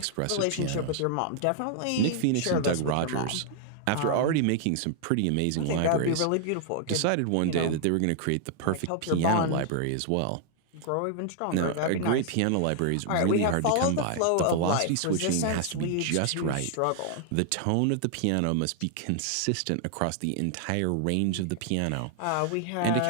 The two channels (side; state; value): both; different; correlation 0.00